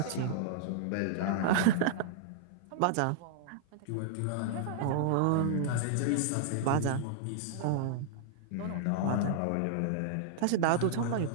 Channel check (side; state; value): both; different; correlation -0.01